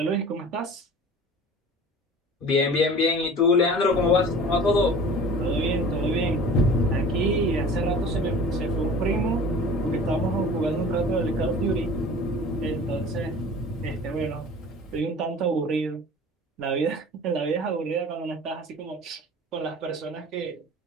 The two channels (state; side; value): normal; both; correlation 0.42